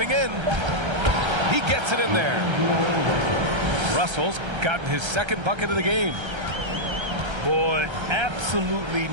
in. He gets it in there. Russell's gotten his second bucket of the game. Boy, absolutely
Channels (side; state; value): left; late; 1.3 ms